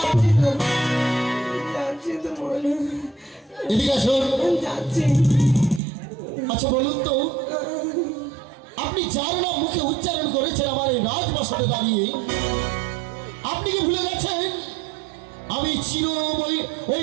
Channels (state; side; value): drops out; left; at 5.8 s